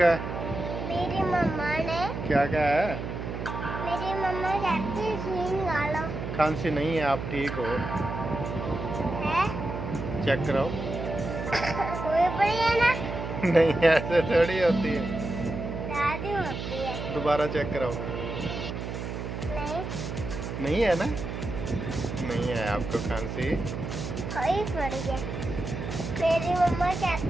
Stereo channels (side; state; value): right; noise; hum, 6 dB below the sound